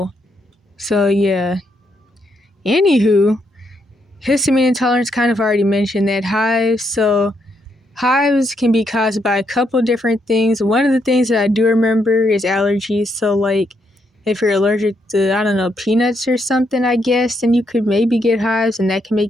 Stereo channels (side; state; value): both; normal; correlation 0.77